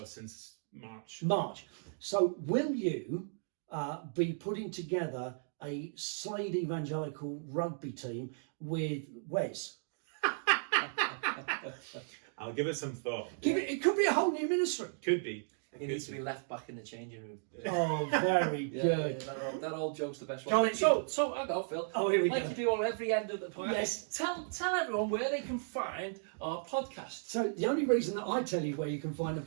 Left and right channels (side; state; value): left; silent; digital silence